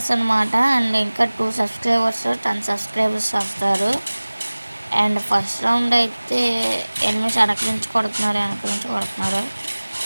అనమాట. అండ్ ఇంకా 2 సబ్స్క్రైబర్స్ 10 సబ్స్క్రైబర్స్ వస్తారు. అండ్ ఫస్ట్ రౌండ్ అయితే ఎనిమిస్ వెనక నుంచి కొడుతున్నారు.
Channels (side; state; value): both; inverted; correlation -1.00